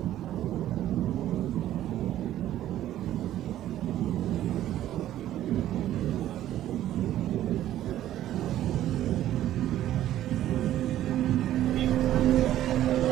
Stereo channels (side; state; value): left; quieter; 12.8 dB